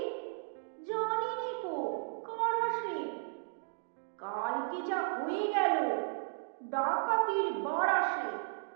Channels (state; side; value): silent; left; digital silence